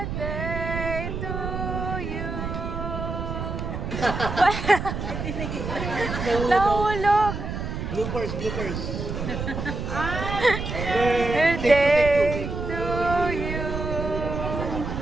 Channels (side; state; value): right; noise; rumble, 5 dB below the sound